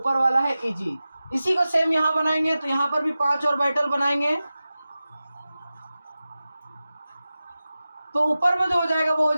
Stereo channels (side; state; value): both; inverted; correlation -0.95